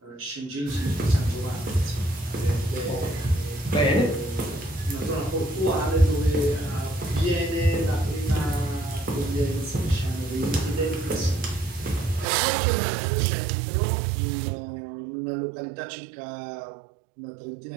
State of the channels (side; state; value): left; drops out; at 12.2 s